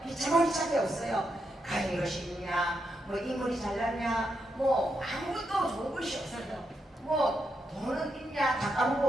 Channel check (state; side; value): normal; both; correlation 0.83